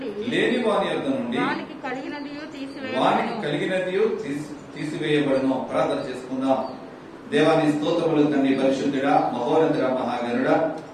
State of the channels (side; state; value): both; identical; correlation 1.00